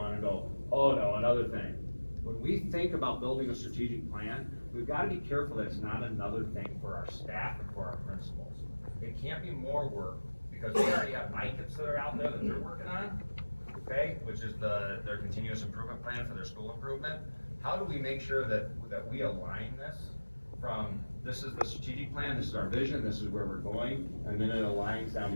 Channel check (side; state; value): both; inverted; correlation -1.00